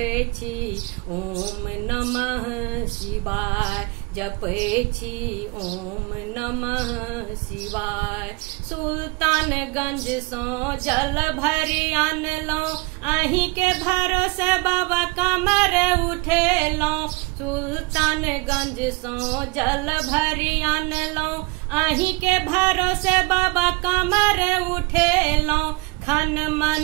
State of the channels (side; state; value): left; quieter; 26.7 dB